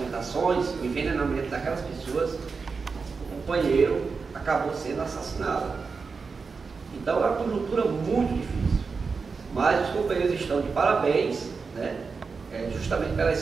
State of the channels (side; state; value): left; quieter; 4.9 dB